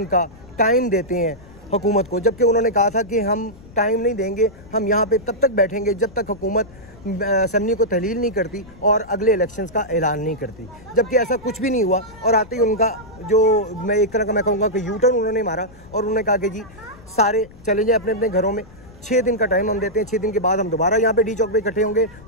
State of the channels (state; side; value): noise; left; rumble, 21 dB below the sound